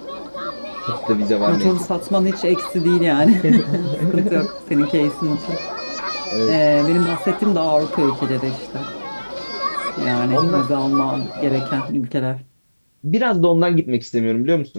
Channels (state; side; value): inverted; both; correlation -1.00